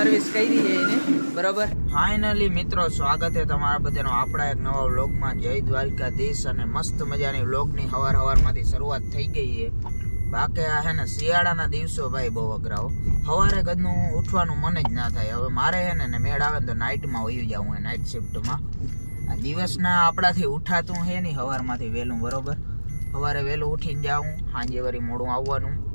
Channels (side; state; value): both; inverted; correlation -1.00